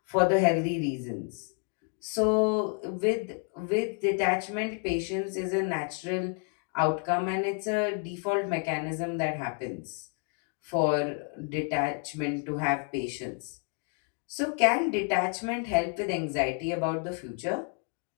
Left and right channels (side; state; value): right; quieter; 38.4 dB